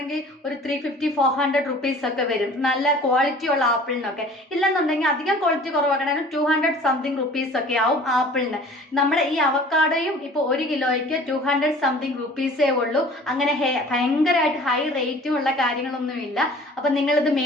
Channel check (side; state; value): both; normal; correlation 0.47